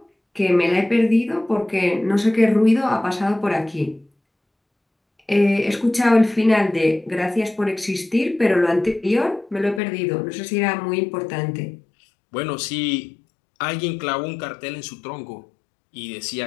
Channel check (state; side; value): drops out; right; at 9.8 s